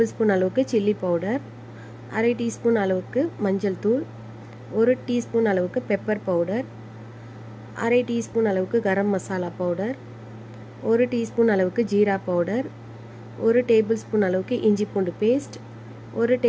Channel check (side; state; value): both; identical; correlation 1.00